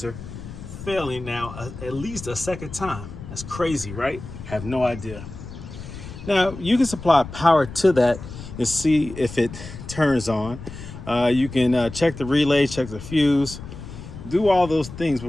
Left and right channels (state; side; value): noise; left; rumble, 12 dB below the sound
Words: failing now at least a second time? That's crazy, right? Have no idea. Now, you can supply power to that and see if it turns on. You can check the relay, check the fuse, do all those things